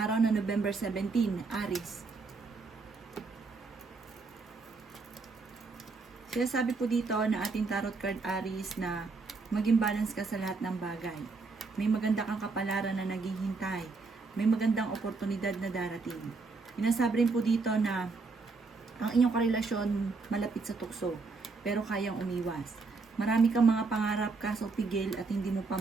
na November 17, Aries. Sinasabi po dito na ating tarot card Aries na maging balance ka sa lahat ng bagay. May maganda kang kapalaran na naghihintay. May magandang oportunidad na darating. Sinasabi rin po dito na ang inyong karelasyon malapit sa tukso, pero kayang umiwas. Marami kang mga pangarap kaso pigil at hindi mo pa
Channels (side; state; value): left; quieter; 4.1 dB